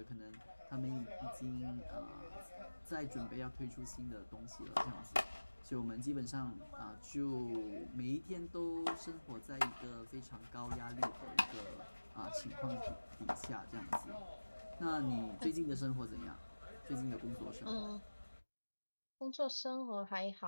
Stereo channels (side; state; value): both; inverted; correlation -1.00